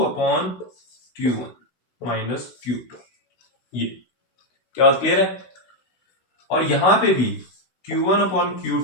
माइनस Q2। ये क्या बात क्लियर है? और यहां पे भी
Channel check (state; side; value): late; right; 16 ms